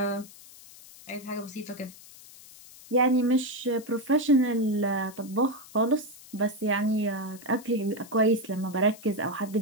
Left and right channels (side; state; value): left; noise; hiss, 20 dB below the sound